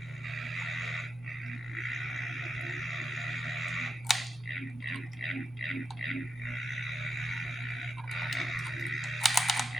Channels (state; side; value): normal; both; correlation 0.85